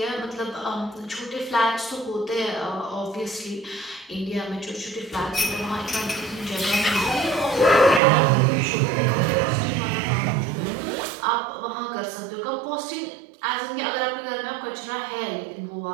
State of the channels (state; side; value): drops out; left; at 8.0 s